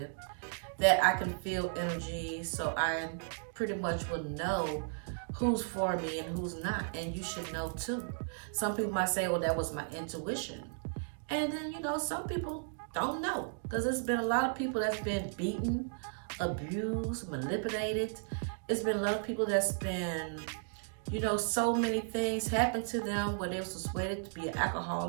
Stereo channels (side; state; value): left; silent; digital silence